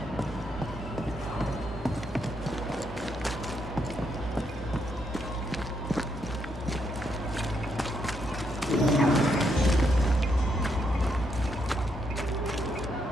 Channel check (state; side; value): normal; both; correlation 0.77